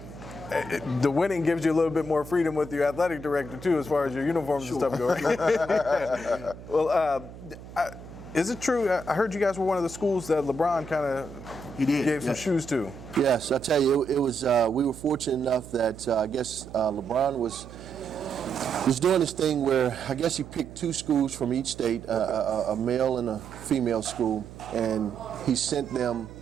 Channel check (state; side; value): noise; right; hum, 16 dB below the sound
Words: The winning gives you a little bit more freedom with your athletic director, too, as far as your uniforms and stuff go. Well, is it true? I heard you guys were one of the schools that LeBron kind of gave some shoes to. Yes, I tell you, it was. We were fortunate enough that I guess LeBron was doing this thing where I guess he picked 2 schools from each state, a male and a female school, and he sent them